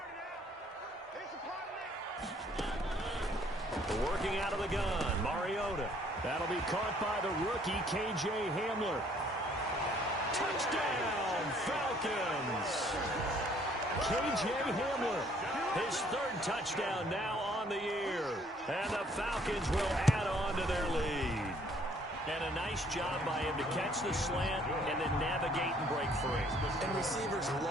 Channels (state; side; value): normal; both; correlation 0.62